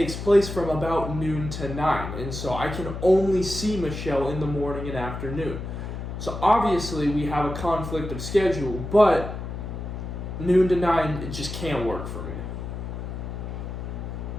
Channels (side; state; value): left; noise; hum, 6 dB below the sound